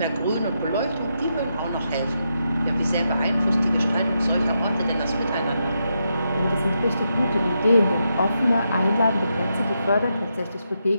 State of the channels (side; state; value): both; inverted; correlation -0.83